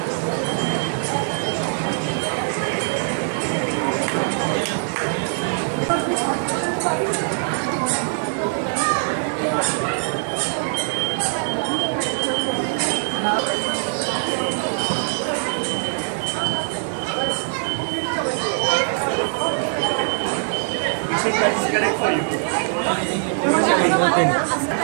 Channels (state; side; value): silent; left; 64 dB below the other